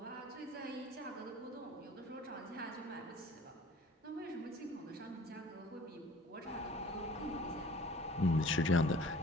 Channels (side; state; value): both; normal; correlation 0.48